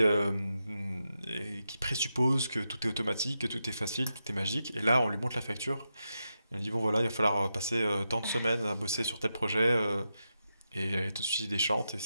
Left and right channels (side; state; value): both; inverted; correlation -0.87